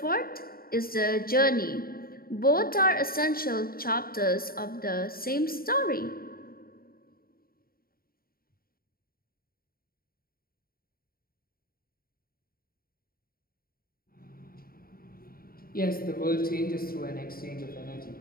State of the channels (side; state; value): right; late; 0.43 ms